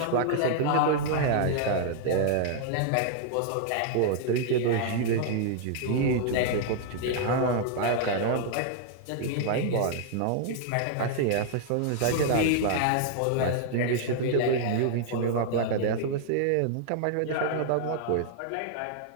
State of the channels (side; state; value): both; different; correlation 0.00